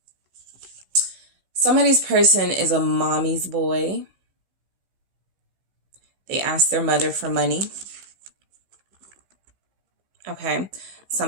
somebody's person is a mommy's boy. They ask their mother for money. Okay.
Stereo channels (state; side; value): late; left; 15 ms